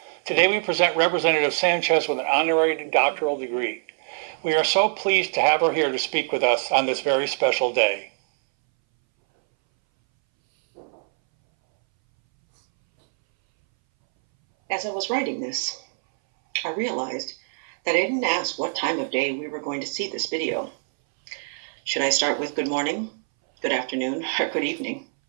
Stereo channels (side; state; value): left; silent; 61 dB below the other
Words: Today we present Representative Sanchez with an honorary doctoral degree. We are so pleased to have her here to speak with us on this very special day. As I was writing this, I realized that I didn't ask what time of day we were going to see this video. Should I start with good morning, good afternoon, or good evening?